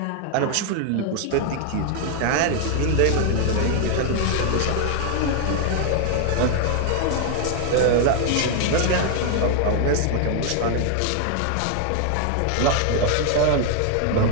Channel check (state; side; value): different; both; correlation 0.00